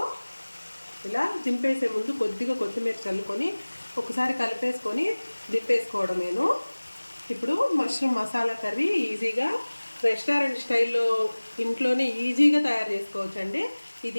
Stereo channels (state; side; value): inverted; both; correlation -1.00